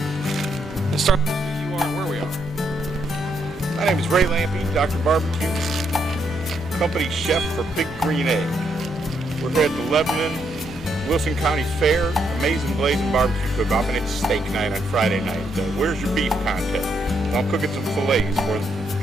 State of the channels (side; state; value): both; normal; correlation 0.76